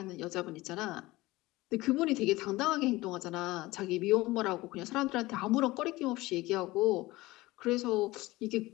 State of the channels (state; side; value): quieter; right; 19.6 dB